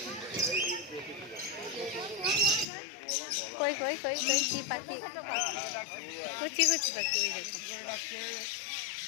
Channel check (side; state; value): right; drops out; at 2.7 s